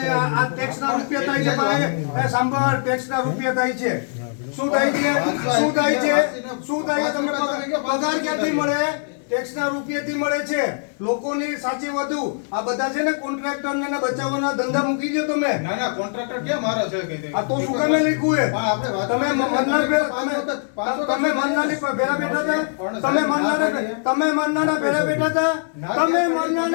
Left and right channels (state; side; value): silent; right; digital silence